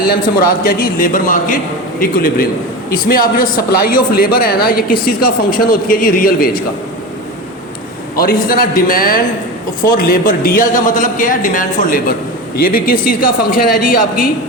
से मुराद क्या जी? Labour market equilibrium. इसमें आप जो सप्लाई ऑफ लेबर है ना, ये किस चीज़ का फंक्शन होती है जी? रियल वेज का। और इसी तरह डिमांड फॉर लेबर, DL का मतलब क्या है? Demand for labour. ये भी किस चीज़ का फंक्शन है जी? आपकी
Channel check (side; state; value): both; normal; correlation 0.25